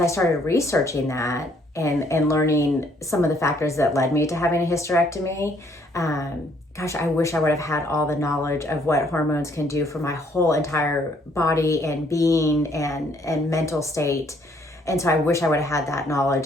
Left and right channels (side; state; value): both; normal; correlation 0.66